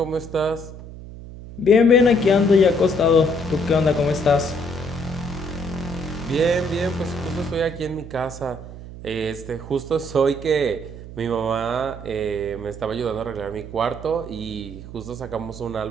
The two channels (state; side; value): noise; right; hum, 13 dB below the sound